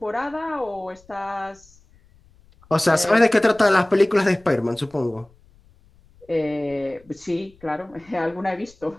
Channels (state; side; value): noise; left; rumble, 29 dB below the sound